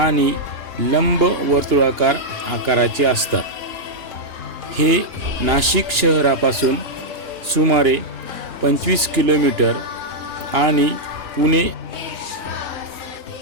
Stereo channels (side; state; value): left; late; 2.9 ms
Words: लंब वर्तुळाकार आकाराचे असतात। हे नाशिक शहरापासून सुमारे 25 किलोमीटर आणि पुणे